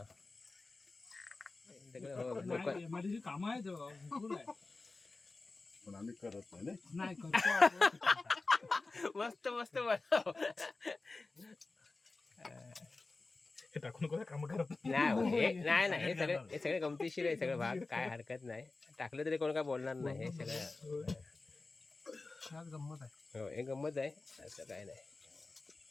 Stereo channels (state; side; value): quieter; right; 3.5 dB